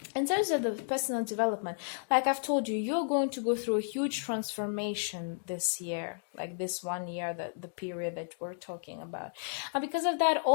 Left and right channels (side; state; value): right; silent; digital silence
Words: In terms of the personal development, like I've told you, you're going to go through a huge transformation this year, like this 1 year, the period that we're talking about. And because of that,